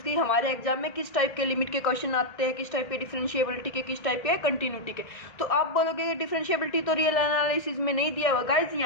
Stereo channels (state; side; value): late; right; 1.6 ms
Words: की। हमारे एग्जाम में किस टाइप के लिमिट के क्वेश्चन आते हैं, किस टाइप के डिफरेंशिएबिलिटी के, किस टाइप के कंटिन्यूटी के। तो आप बोलोगे डिफरेंशिएबिलिटी तो रियल एनालिसिस में नहीं दिया हुआ गाइज,